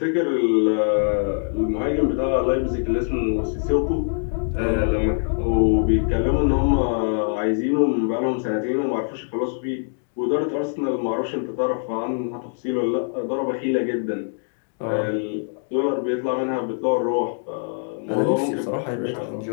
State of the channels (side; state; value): right; silent; 63 dB below the other